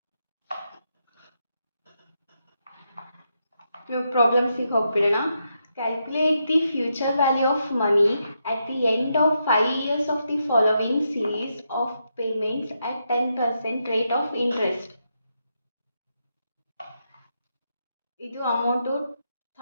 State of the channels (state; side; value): inverted; both; correlation -0.82